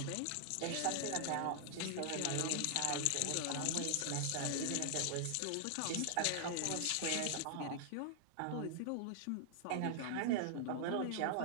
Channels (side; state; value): both; different; correlation 0.00